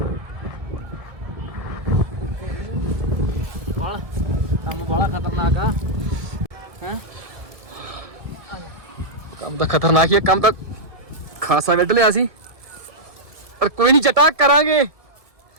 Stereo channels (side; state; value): left; late; 1.7 ms